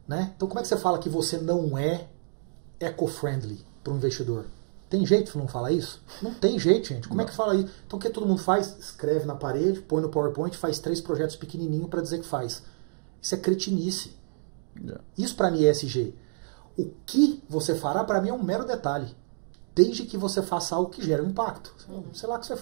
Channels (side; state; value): left; silent; digital silence